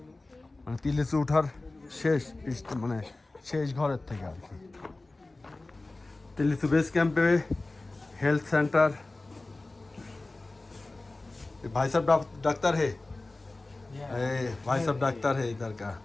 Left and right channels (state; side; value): quieter; right; 3.1 dB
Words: মানে তিলিসু উঠার শেষ মানে শেষ ঘরের থেকে আর কি। तिलिसु बेस कैंप पे हेल्थ सेंटर। भाई साहब डॉक्टर है, भाई साहब डॉक्टर है इधर का।